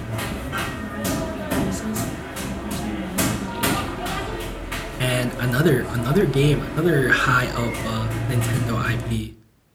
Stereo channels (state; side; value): identical; both; correlation 1.00